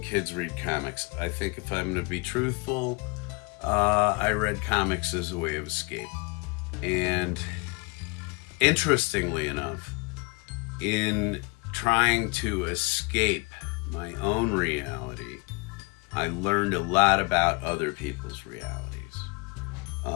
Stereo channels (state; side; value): quieter; right; 29.7 dB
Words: kids read comics. I think if I'm going to be truthful, I read comics as a way of escape. And interestingly enough, in trying to escape my own reality, I learned a lot about other people's realities.